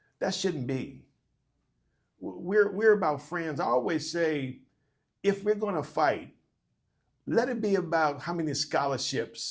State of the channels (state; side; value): identical; both; correlation 1.00